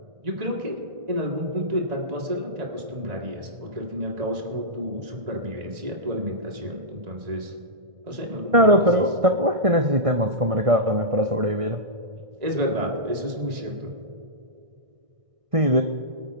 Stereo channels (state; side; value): late; left; 1.6 ms